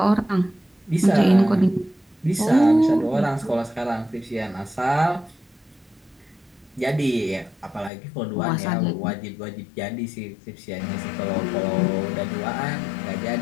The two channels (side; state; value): right; drops out; at 7.9 s